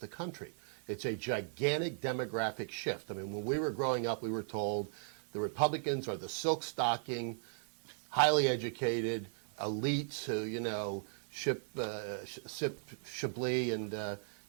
the country. It's a gigantic demographic shift. I mean, when we were growing up, we were told the Republicans are the silk stocking, highly educated elites who, sip Chablis and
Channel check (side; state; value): left; silent; digital silence